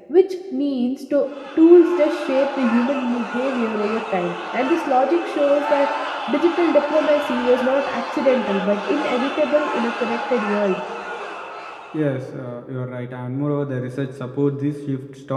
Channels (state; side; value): identical; both; correlation 1.00